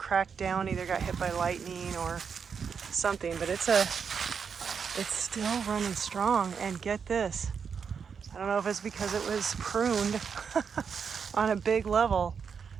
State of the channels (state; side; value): quieter; left; 6.4 dB